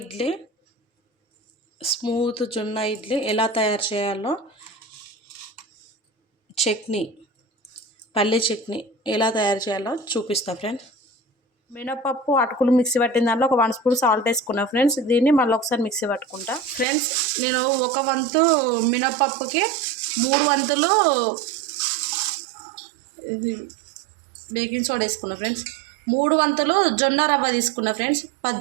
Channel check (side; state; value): left; drops out; at 16.9 s